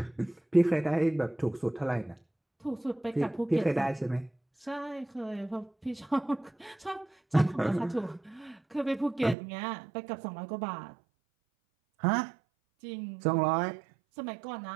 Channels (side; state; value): left; drops out; at 9.3 s